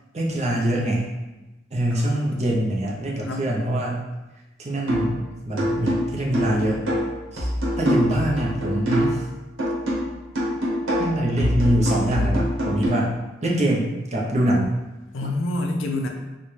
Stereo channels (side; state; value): both; normal; correlation 0.78